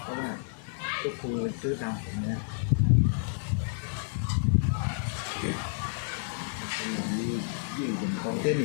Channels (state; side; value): silent; right; digital silence